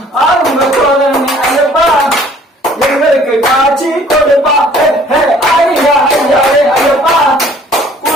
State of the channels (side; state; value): both; normal; correlation 0.56